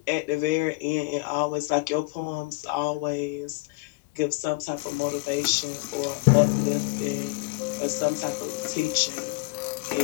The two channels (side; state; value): right; quieter; 25.0 dB